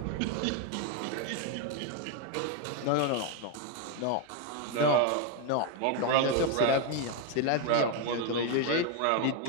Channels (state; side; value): different; both; correlation 0.01